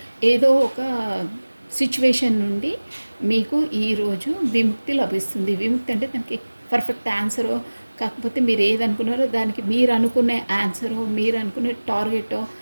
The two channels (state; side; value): inverted; both; correlation -1.00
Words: ఏదో ఒక సిచ్యువేషన్ నుండి మీకు ఈరోజు విముక్తి లభిస్తుంది. విముక్తి అంటే దానికి పర్ఫెక్ట్ ఆన్సరో, కాకపోతే మీరు ఏదనుకున్నారో దానికి మీరు అనుకునే ఆన్సరో, మీరు అనుకునే టార్గెటో,